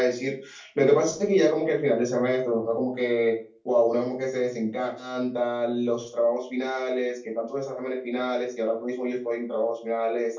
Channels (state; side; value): identical; both; correlation 1.00